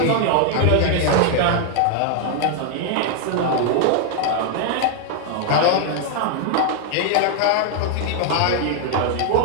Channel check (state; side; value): different; both; correlation 0.00